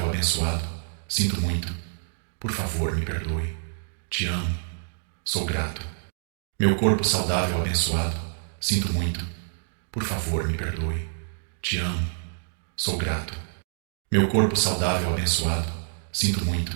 abençoado, sinto muito. Por favor, me perdoe. Te amo. Sou grato. Meu corpo saudável abençoado, sinto muito. Por favor, me perdoe. Te amo. Sou grato. Meu corpo saudável abençoado, sinto muito.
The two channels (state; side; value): silent; left; digital silence